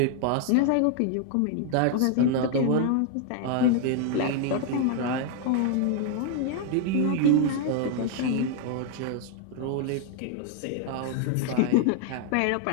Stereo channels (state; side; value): different; both; correlation 0.00